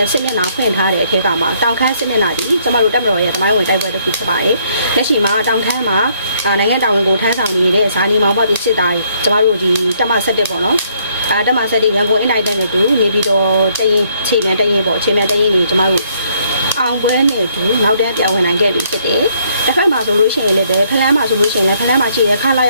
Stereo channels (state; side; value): inverted; both; correlation -0.68